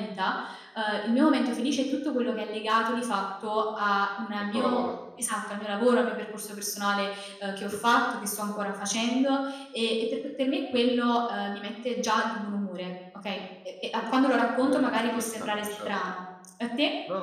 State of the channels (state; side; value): identical; both; correlation 1.00